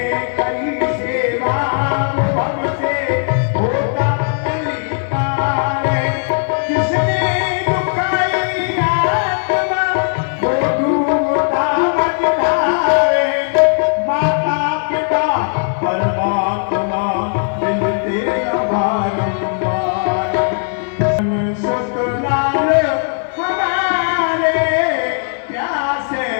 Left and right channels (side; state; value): right; silent; digital silence